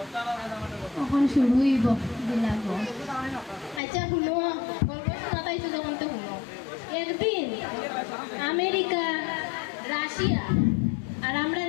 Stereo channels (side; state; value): right; drops out; at 3.8 s